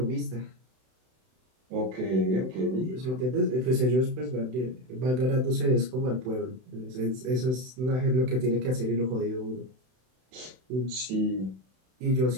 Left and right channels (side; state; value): left; late; 31 ms